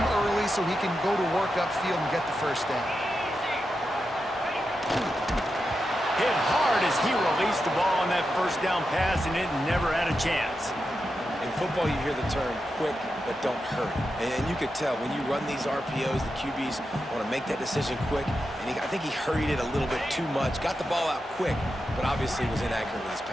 early so he can go to work upfield and get the first down. Hit hard as he released the ball on that first down pass, and it never had a chance. In football, you hear the term quick, but don't hurry. And you could tell when you run these RPOs, the QBs want to make that decision quick. And I think he hurried it a little bit too much. Got the ball out quick, but obviously was inaccurate with his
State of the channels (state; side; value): normal; both; correlation 0.88